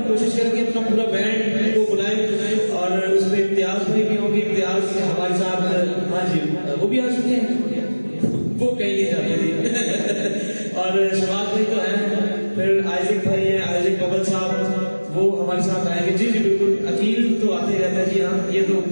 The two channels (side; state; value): both; inverted; correlation -1.00